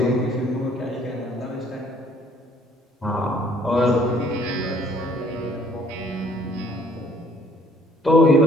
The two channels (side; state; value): both; normal; correlation 0.59